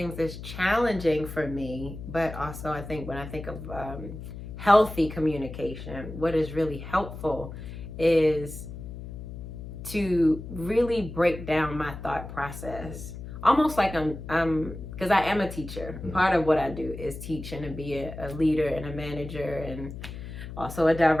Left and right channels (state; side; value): noise; left; hum, 10 dB below the sound